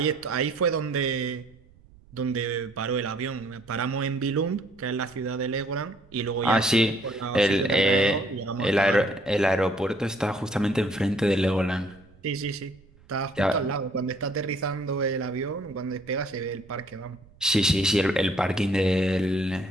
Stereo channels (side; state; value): right; noise; rumble, 26 dB below the sound